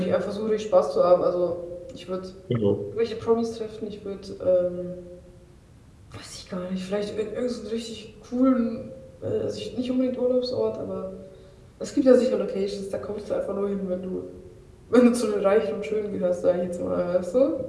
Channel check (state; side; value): identical; both; correlation 1.00